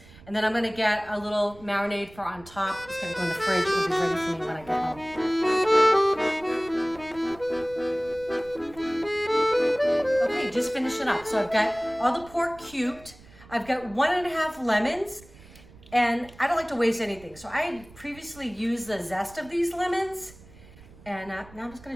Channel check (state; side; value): noise; right; rumble, 22 dB below the sound